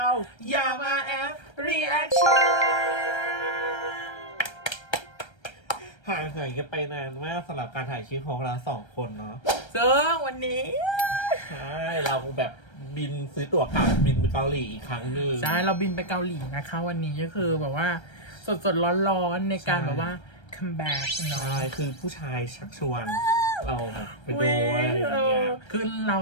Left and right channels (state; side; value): late; right; 1.3 ms